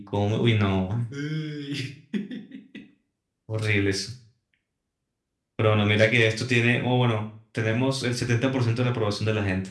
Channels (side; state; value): both; identical; correlation 1.00